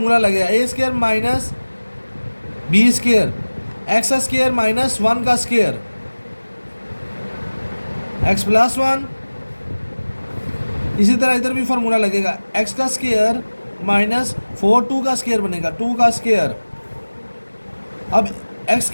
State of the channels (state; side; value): inverted; both; correlation -1.00